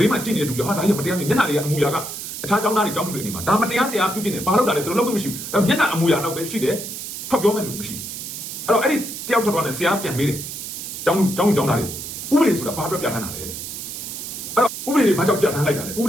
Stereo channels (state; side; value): noise; right; hiss, 8 dB below the sound